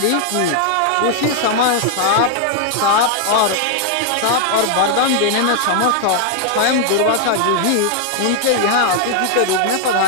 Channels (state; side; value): different; both; correlation 0.00